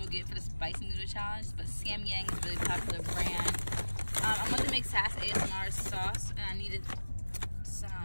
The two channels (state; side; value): inverted; both; correlation -1.00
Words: get for the spicy noodle challenge. But Samyang is a really popular brand. I'm going to make Sass ASMR sauce, and I needed